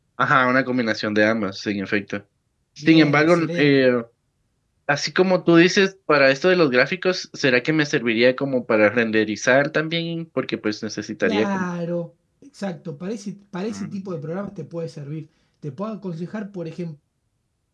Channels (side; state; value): both; identical; correlation 1.00